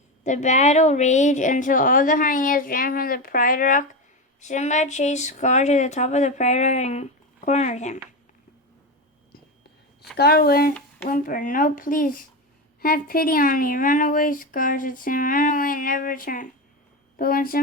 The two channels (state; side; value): normal; both; correlation 0.17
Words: The battle raged until all the hyenas ran from the Pride Rock. Simba chased Scar to the top of the Pride Rock and cornered him. Scar whimpered, No, please, have pity on me. Run away, Scar, said Simba. Run away and never return. But when